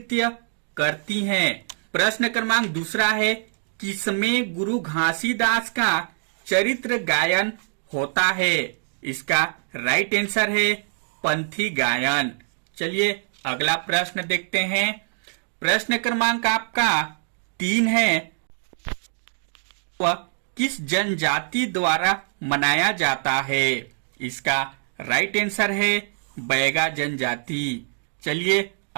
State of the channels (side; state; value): left; silent; digital silence